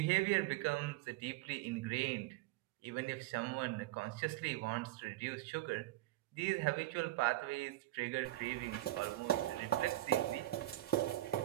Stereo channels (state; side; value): quieter; left; 16.4 dB